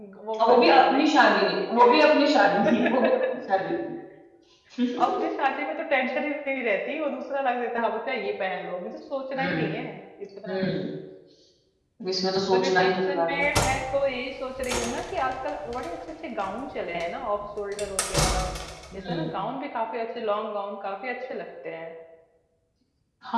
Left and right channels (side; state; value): both; identical; correlation 1.00